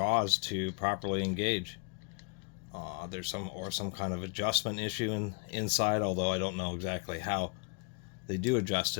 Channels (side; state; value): right; quieter; 34.1 dB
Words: to properly engage. There's some kind of adjustment issue inside, although I don't know exactly how they do adjust